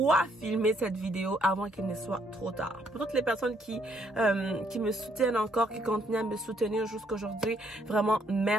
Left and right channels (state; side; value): normal; both; correlation 0.70